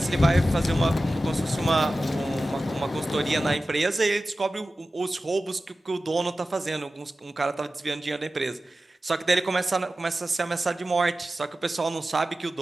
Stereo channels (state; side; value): normal; both; correlation 0.95